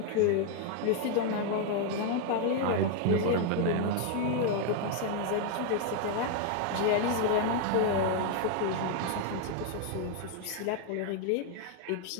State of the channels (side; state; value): both; different; correlation 0.01